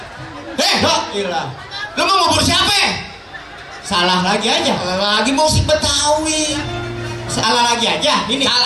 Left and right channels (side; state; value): both; identical; correlation 1.00